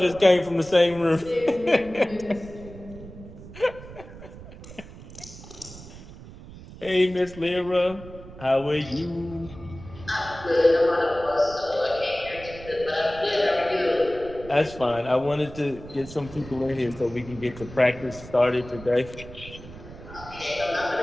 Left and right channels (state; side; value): noise; right; rumble, 16 dB below the sound